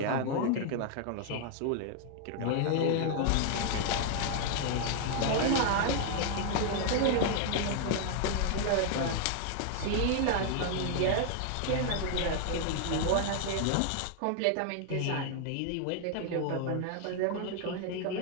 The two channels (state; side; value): different; both; correlation 0.00